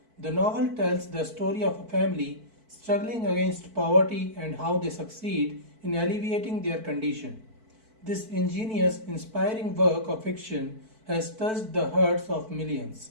The novel tells the story of a family struggling against poverty and how they succeed in alleviating their condition. This ingenious, inspiring work of fiction has touched the hearts of millions.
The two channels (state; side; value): late; left; 4.5 ms